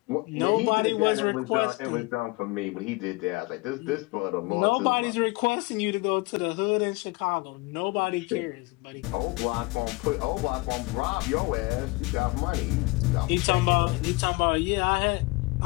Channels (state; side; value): quieter; right; 25.0 dB